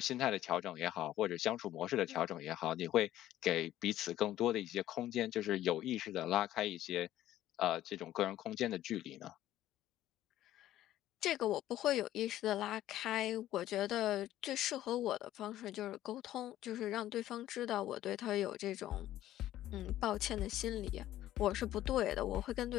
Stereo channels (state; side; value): quieter; right; 13.5 dB